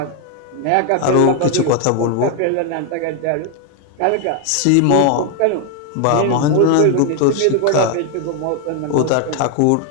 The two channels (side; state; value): both; different; correlation 0.01